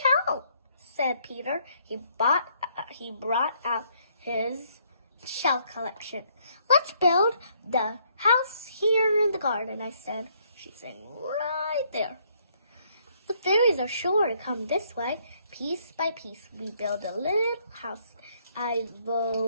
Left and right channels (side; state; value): both; inverted; correlation -0.68